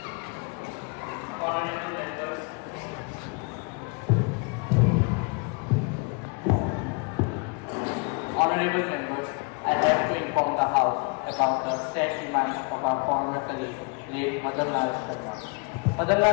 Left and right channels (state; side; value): quieter; right; 33.6 dB